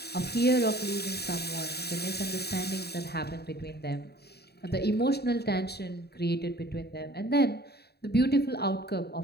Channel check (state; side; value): late; right; 0.47 ms